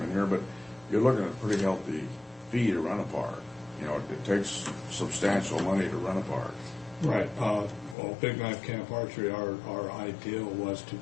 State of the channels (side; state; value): right; drops out; at 8.0 s